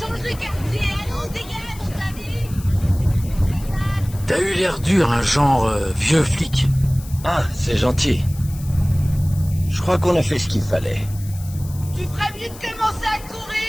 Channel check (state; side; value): noise; left; hiss, 19 dB below the sound